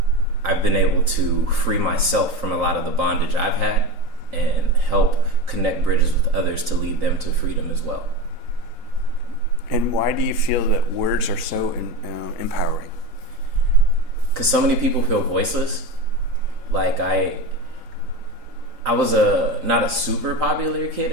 been able to free myself from a lot of the bondage I've had and help connect bridges with others to lead them to freedom as well. And why do you feel that words are so empowering? Because so many people feel voiceless. Like I was not a super popular kid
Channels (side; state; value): left; late; 3.9 ms